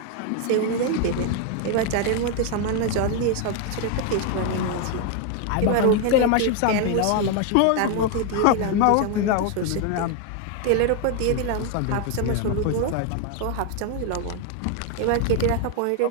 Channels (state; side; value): different; both; correlation 0.01